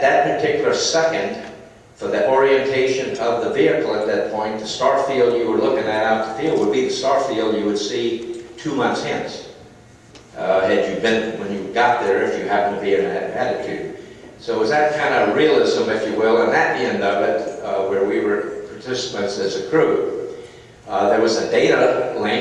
particular second, for the orientation of the vehicle at that point, the star field you were looking at out the field would be the star field you would see 2 months hence, had you been, when you got there, if you happened to be in that attitude. So it was that kind of realism, if you will, and at the end of it, where we were participants as a crew. There was a data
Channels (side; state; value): both; identical; correlation 1.00